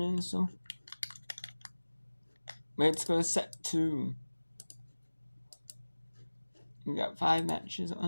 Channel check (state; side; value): inverted; both; correlation -1.00